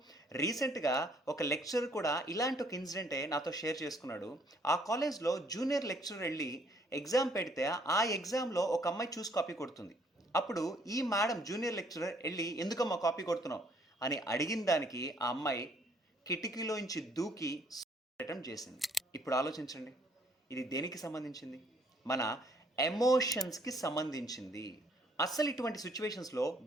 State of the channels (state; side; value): normal; both; correlation 0.64